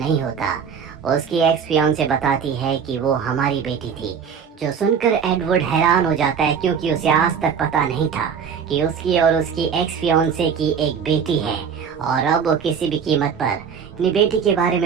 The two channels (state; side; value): quieter; left; 7.0 dB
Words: होता। उसकी एक्स फियोंसे बताती है कि वो हमारी बेटी थी। जो सुनकर एडवर्ड हैरान हो जाता है, क्योंकि उसे आज तक पता नहीं था कि उसकी और उसकी एक्स फियोंसे की एक बेटी है। और अब वो किसी भी कीमत पर अपनी बेटी के बारे